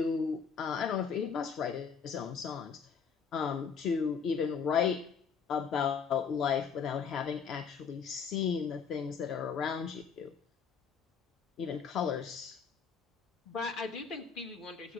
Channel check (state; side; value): quieter; right; 6.4 dB